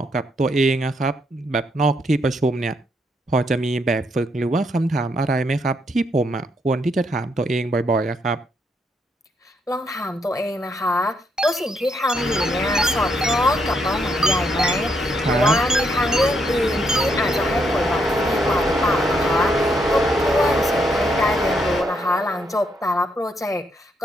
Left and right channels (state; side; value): normal; both; correlation 0.76